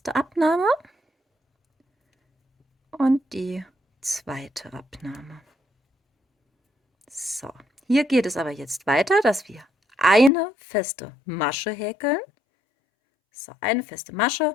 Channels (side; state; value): right; drops out; at 10.3 s